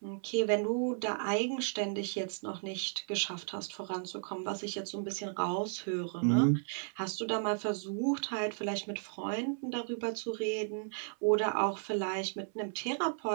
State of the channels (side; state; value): left; silent; 55 dB below the other